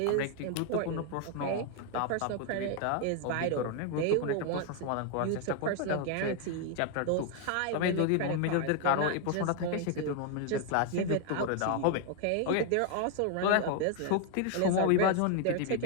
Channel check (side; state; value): both; different; correlation 0.00